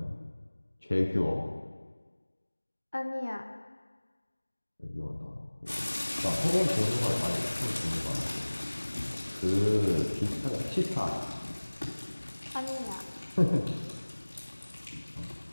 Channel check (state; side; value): inverted; both; correlation -1.00